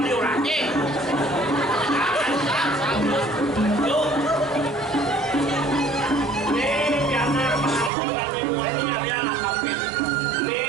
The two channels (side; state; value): left; drops out; at 7.9 s